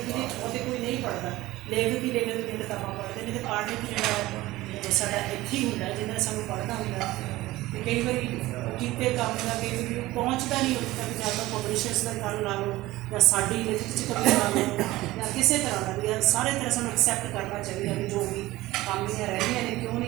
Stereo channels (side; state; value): left; quieter; 17.9 dB